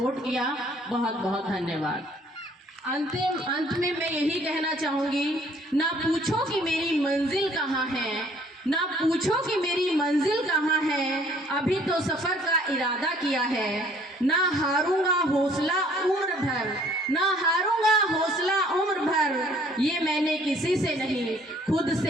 किया। बहुत बहुत धन्यवाद। अंत में मैं यही कहना चाहूँगी, ना पूछो कि मेरी मंजिल कहाँ है, ना पूछो कि मेरी मंजिल कहाँ है, अभी तो सफ़र का इरादा किया है। ना हारूंगा हौसला उम्र भर, ना हारूंगा हौसला उम्र भर, ये मैंने किसी से नहीं खुद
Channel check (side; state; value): both; normal; correlation 0.59